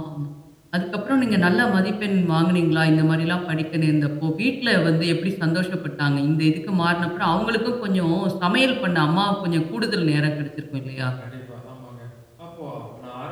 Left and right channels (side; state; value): both; identical; correlation 1.00